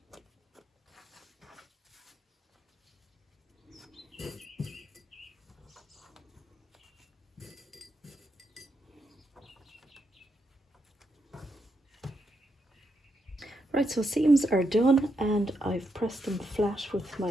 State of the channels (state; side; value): normal; both; correlation 0.81